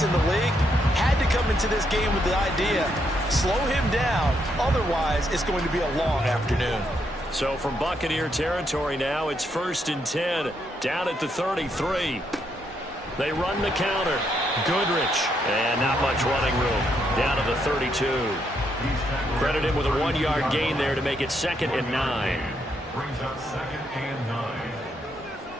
in the league. Had to come into this game with the idea, slow him down, otherwise it's going to be a long afternoon. So from Buccaneer territory now, it's first and 10, down at the 33. They run the counter. Goodrich, and not much running room, down to the 32. Credit him with a 1-yard gain there to make it second and 9. Brings up second and 9.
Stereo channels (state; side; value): normal; both; correlation 0.77